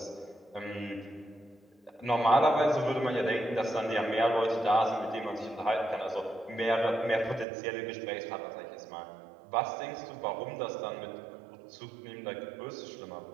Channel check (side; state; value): left; drops out; at 7.5 s